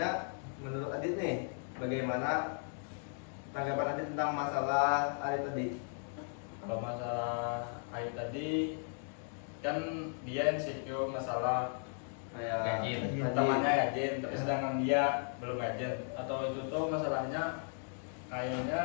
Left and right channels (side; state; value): right; silent; 54 dB below the other